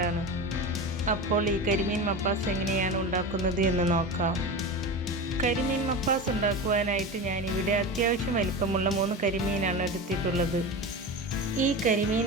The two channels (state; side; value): normal; both; correlation 0.26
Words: അപ്പോൾ ഈ കരിമീൻ മപ്പാസ് എങ്ങനെയാണ് ഉണ്ടാക്കുന്നത് എന്ന് നോക്കാം. കരിമീൻ മപ്പാസ് ഉണ്ടാക്കുവാനായിട്ട് ഞാനിവിടെ അത്യാവശ്യം വലിപ്പമുള്ള 3 കരിമീനാണ് എടുത്തിട്ടുള്ളത്. ഈ